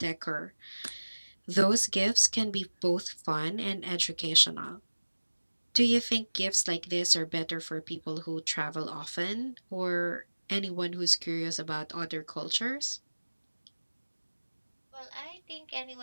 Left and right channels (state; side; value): inverted; both; correlation -1.00